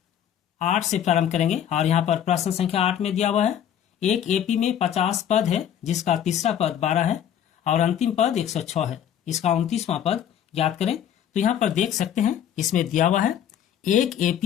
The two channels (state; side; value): quieter; right; 9.7 dB